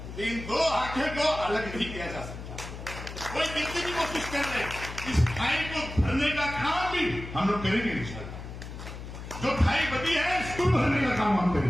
इन 2 आंखें को अलग नहीं किया जा सकता। कोई कितनी भी कोशिश कर रहे, इस खाई को भरने का काम भी हम लोग करेंगे इंशाअल्लाह। जो खाई बची है इसको भरने का काम हम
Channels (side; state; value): left; noise; hum, 10 dB below the sound